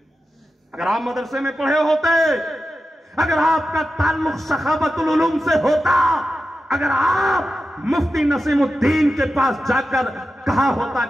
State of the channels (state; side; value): normal; both; correlation 0.91